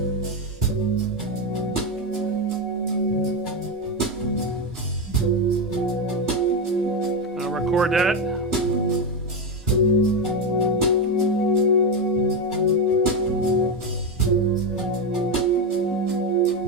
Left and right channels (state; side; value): normal; both; correlation 0.10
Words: I'll record that.